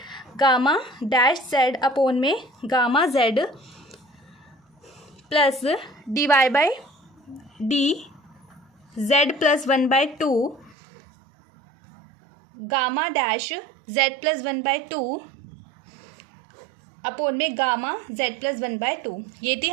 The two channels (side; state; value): left; drops out; at 10.8 s